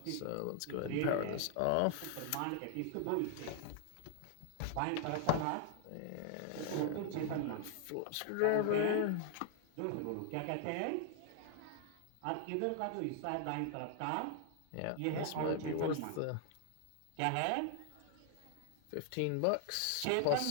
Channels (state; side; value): different; both; correlation 0.00